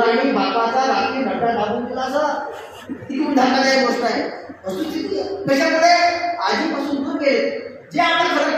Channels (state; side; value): identical; both; correlation 1.00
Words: बापाचा रात्री नटा टाकून दिला. असं तिकडून धक्कादायक गोष्ट आहे. वस्तुस्थिती कशामुळे आजीपासून दूर गेले. जे आपलं खरं